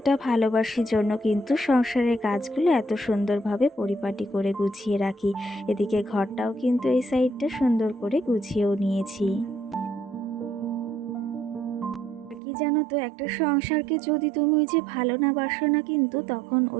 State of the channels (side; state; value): left; drops out; at 12.4 s